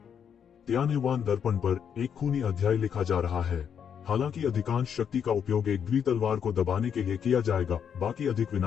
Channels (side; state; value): right; quieter; 7.9 dB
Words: तियानयुआन दर्पण पर एक खूनी अध्याय लिखा जा रहा है। हालांकि अधिकांश शक्ति का उपयोग एक द्वि तलवार को दबाने के लिए किया जाएगा, बाकी अधिक